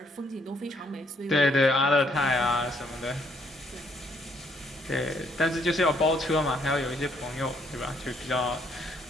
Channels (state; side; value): normal; both; correlation 0.69